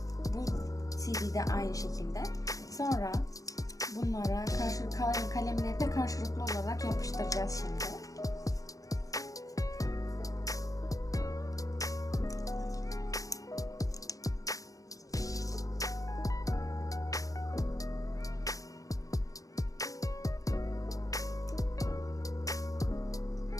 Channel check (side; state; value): right; late; 0.17 ms